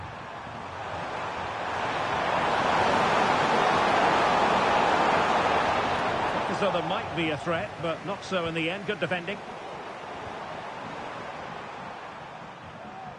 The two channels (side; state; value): both; identical; correlation 1.00